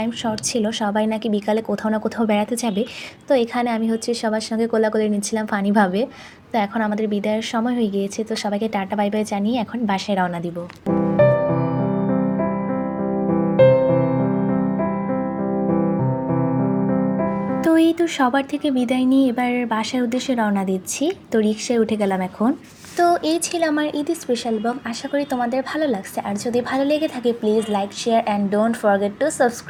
শর্ট ছিল, সবাই নাকি বিকালে কোথাও না কোথাও বেড়াতে যাবে। তো এখানে আমি হচ্ছে সবার সঙ্গে কোলাকুলি নিচ্ছিলাম ফানিভাবে। তো এখন আমাদের বিদায়ের সময় হয়ে গিয়েছে, তো সবাইকে টাটা বাই বাই জানিয়ে এখন বাসায় রওনা দিব। তো এই তো সবার থেকে বিদায় নিয়ে এবার বাসার উদ্দেশ্যে রওনা দিচ্ছি। তো রিক্সায় উঠে গেলাম এখন। তো এই ছিল আমার ঈদ স্পেশাল ব্লগ। আশা করি তোমাদের ভালো লাগছে, আর যদি ভালো লেগে থাকে please like share and don't forget to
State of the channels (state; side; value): identical; both; correlation 1.00